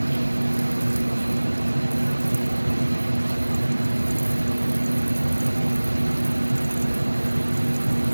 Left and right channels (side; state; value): both; inverted; correlation -1.00